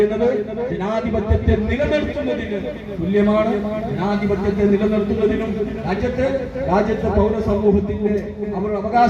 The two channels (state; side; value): identical; both; correlation 1.00